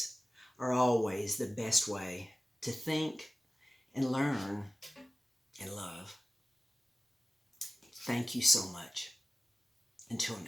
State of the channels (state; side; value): normal; both; correlation 0.96